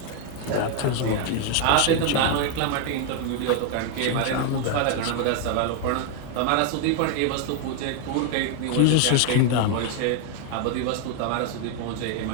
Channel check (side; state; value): both; different; correlation 0.00